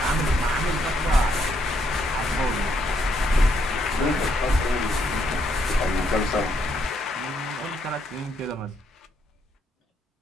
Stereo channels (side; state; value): both; normal; correlation 0.74